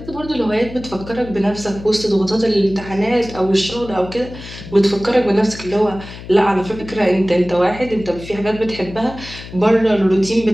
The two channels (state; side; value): noise; left; hum, 14 dB below the sound